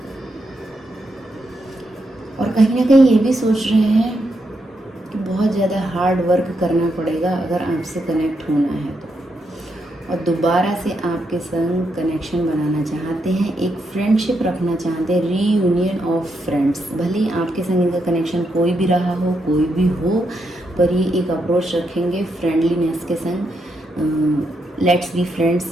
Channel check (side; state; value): both; normal; correlation 0.81